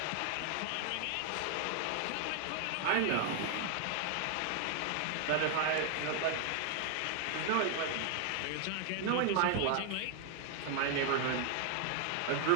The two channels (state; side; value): different; both; correlation 0.00